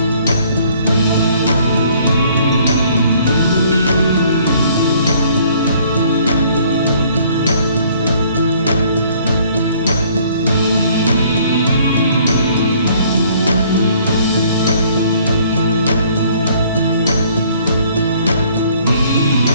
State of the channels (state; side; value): inverted; both; correlation -0.60